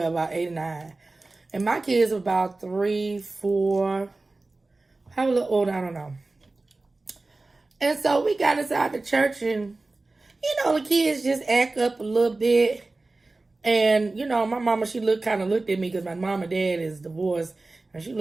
or 9. And my kids were about 3, 4, probably a little older, I don't know. And so we got inside the church and, you know, the kids just act up a little bit. And, you know, my mama, she kind of looked at me because my mom and dad is divorced. And she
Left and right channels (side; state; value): left; quieter; 3.3 dB